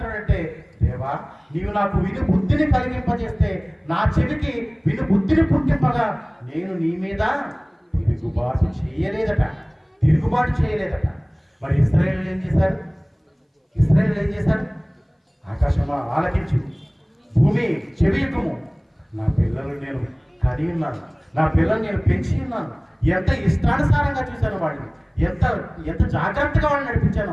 దేవా నీవు నాకు విను బుద్ధిని కలిగింపజేస్తే నా చెవికి విను బుద్ధిని పుట్టింపగా నేను నీ మీద తిరుగుబాటు చేయలేదట. మరి ఇశ్రాయేలు ఏం చేశారు? ఆకాశమా ఆలకించు, భూమి చెవియకుము, నా పిల్లలు నేను కని ఉన్నాను, నా పిల్లలు నేను పెంచి ఉన్నాను, ఎంత ఇష్టానుసారంగా చూశాను వాడిని, ఎంత జాగ్రత్తగా వాళ్ళని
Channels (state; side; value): identical; both; correlation 1.00